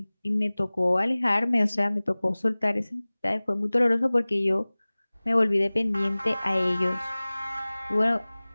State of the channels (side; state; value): both; inverted; correlation -1.00